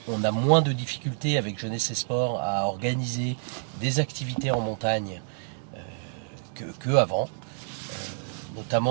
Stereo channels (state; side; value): silent; left; 59 dB below the other